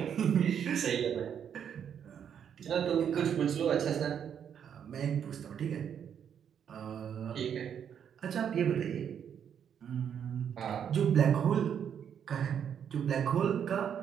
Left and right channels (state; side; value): quieter; left; 8.4 dB